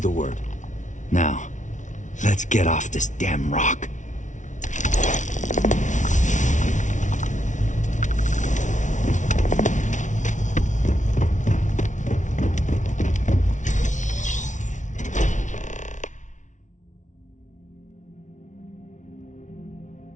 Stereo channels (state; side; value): late; right; 0.36 ms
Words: word. Now, let's get off this damn rock.